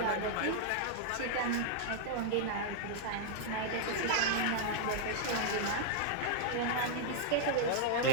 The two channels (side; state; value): both; different; correlation -0.01